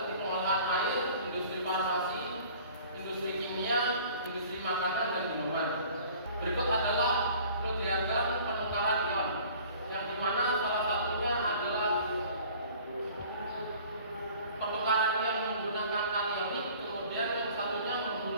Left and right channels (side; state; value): both; inverted; correlation -0.49